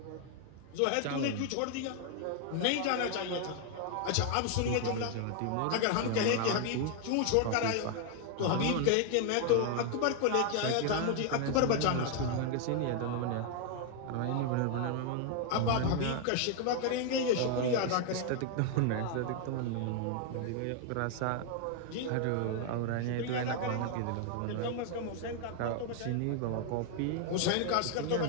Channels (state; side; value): different; both; correlation 0.00